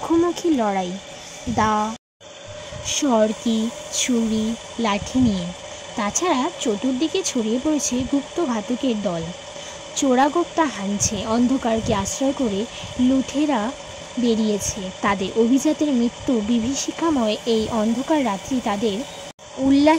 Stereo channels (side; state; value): both; identical; correlation 1.00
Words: লড়াই, দা, সরকি, ছুরি, লাঠি নিয়ে। তাছাড়া চতুর্দিকে ছড়িয়ে পড়েছে গুপ্তঘাতকের দল। চোরাগোপ্তা হানছে, অন্ধকারকে আশ্রয় করে লুঠেরা বেরিয়েছে। তাদের অভিজাতের মৃত্যু বিভীষিকাময় এই অন্ধকার রাত্রি তাদের